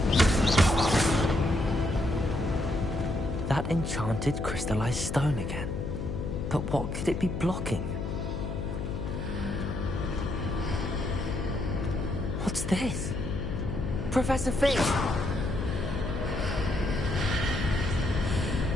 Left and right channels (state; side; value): noise; left; hum, 4 dB below the sound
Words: That enchanted crystallized stone again. But what could it be blocking? What's this? Professor Fish!